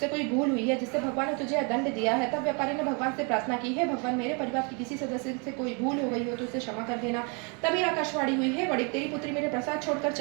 कोई भूल हुई है जिससे भगवान ने तुझे दंड दिया है। तब व्यापारी ने भगवान से प्रार्थना की, हे भगवान, मेरे परिवार के किसी सदस्य से कोई भूल हो गई हो तो उसे क्षमा कर देना। तभी आकाशवाणी हुई, हे बड़ी, तेरी पुत्री मेरे प्रसाद छोड़कर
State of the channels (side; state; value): left; quieter; 34.7 dB